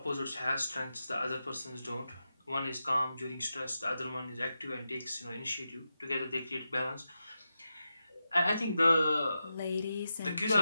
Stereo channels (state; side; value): inverted; both; correlation -0.90